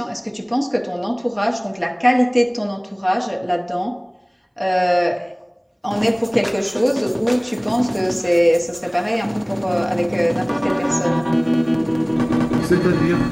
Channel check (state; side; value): identical; both; correlation 1.00